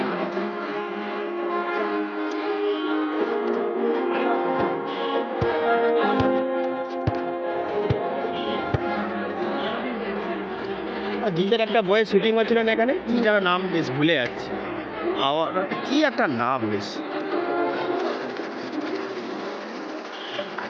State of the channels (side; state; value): both; identical; correlation 1.00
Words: জিতের একটা বইয়ের শুটিং হচ্ছিল না এখানে, কি যেন নাম বেশ ভুলে যাচ্ছে, কি একটা নাম বেশ।